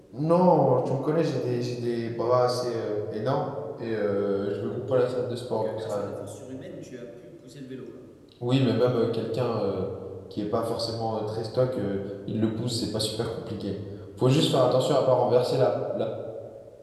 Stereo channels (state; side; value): identical; both; correlation 1.00